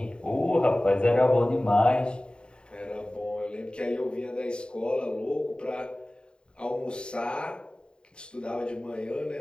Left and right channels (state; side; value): late; right; 0.051 ms